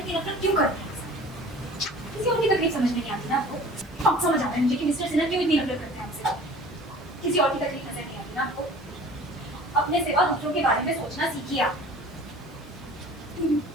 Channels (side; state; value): both; normal; correlation 0.45